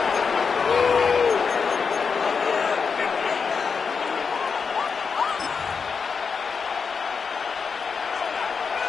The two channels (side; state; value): right; quieter; 5.6 dB